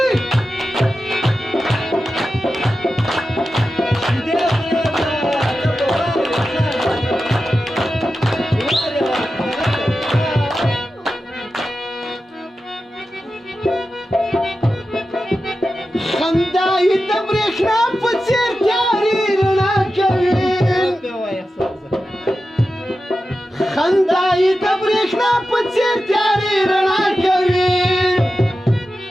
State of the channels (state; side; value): normal; both; correlation 0.92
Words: خندا یې د برېښنا په څېر تیارې رڼا کوي خندا یې د برېښنا په څېر تیارې رڼا کوي